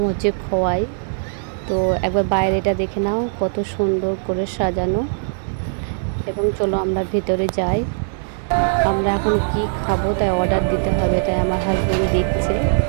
হচ্ছে খোয়াই। তো একবার বাইরেটা দেখে নাও, কত সুন্দর করে সাজানো। এবং চলো আমরা ভিতরে যাই। আমরা এখন কি খাবো তাই অর্ডার দিতে হবে, তাই আমার হাজব্যান্ড দেখছে।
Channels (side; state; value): left; silent; digital silence